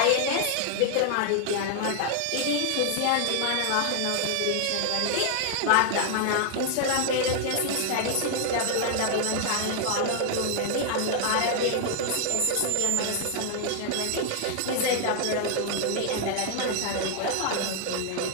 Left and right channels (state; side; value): different; both; correlation 0.00